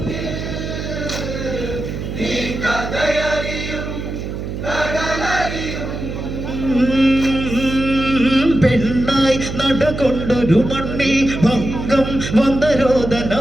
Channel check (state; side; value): noise; right; hum, 6 dB below the sound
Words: പെണ്ണായി നടകൊണ്ടൊരു മണ്ണിൽ ഭംഗം വന്ന